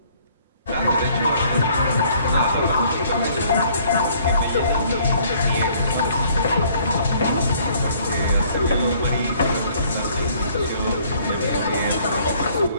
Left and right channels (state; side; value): inverted; both; correlation -0.61